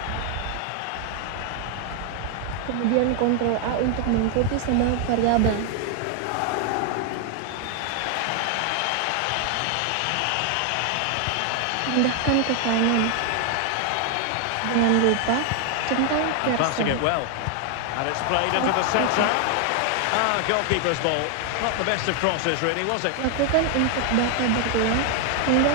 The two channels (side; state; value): both; different; correlation 0.00